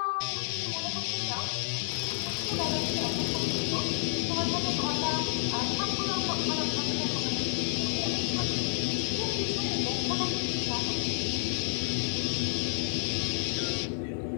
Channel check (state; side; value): silent; right; digital silence